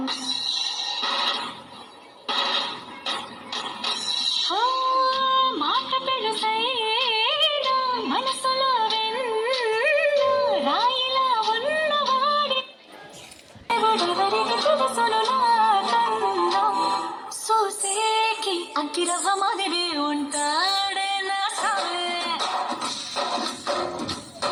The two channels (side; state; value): both; identical; correlation 1.00